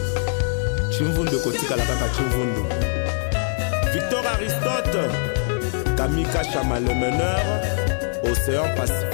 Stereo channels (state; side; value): silent; right; 64 dB below the other